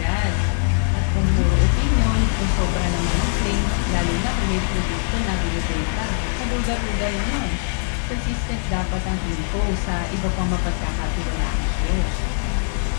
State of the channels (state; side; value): silent; right; digital silence